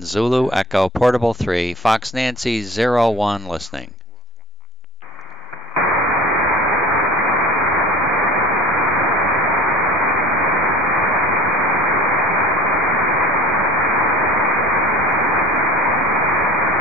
Zulu Echo Portable 3, Fox Nancy 01 listening.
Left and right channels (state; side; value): normal; both; correlation 0.42